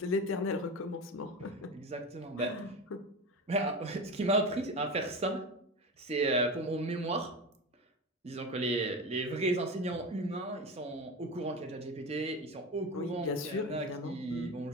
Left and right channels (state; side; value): normal; both; correlation 0.25